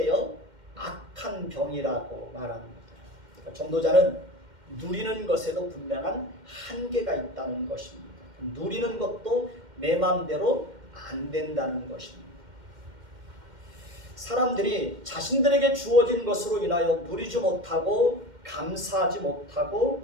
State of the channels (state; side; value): late; left; 2.1 ms